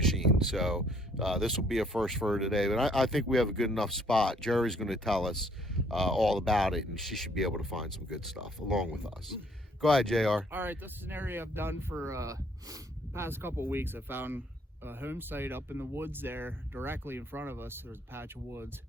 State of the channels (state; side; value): normal; both; correlation 0.64